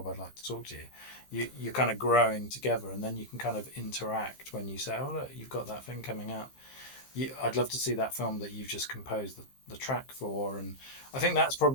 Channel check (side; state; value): right; late; 15 ms